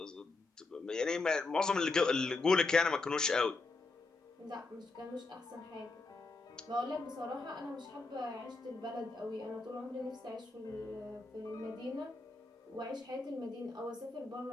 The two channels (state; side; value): quieter; right; 3.6 dB